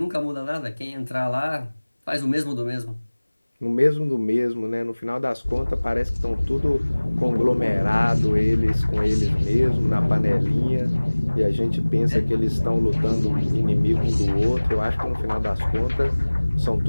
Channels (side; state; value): both; inverted; correlation -1.00